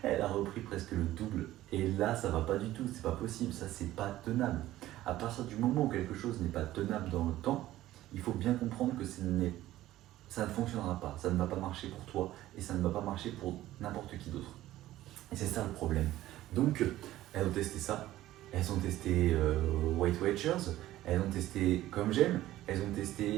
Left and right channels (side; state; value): left; quieter; 15.0 dB